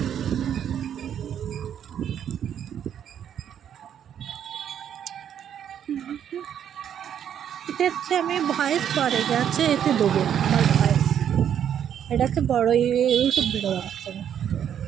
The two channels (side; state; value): left; quieter; 9.3 dB